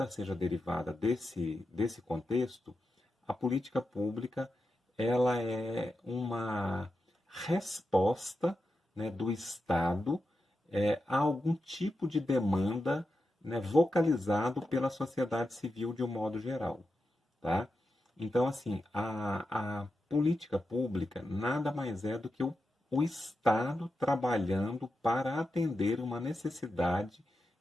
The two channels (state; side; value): normal; both; correlation 0.89